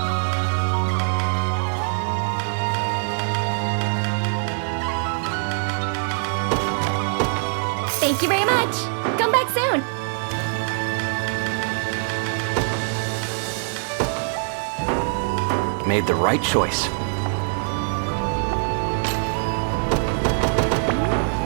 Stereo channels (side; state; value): left; silent; digital silence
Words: Thank you very much. Come back soon. Made the right choice.